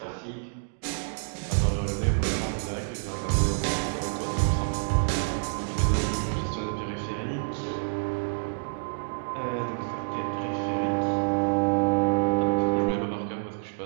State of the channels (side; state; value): left; silent; digital silence